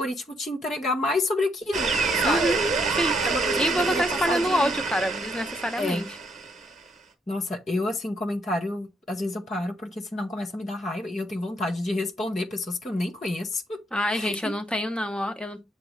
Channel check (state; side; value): normal; both; correlation 0.73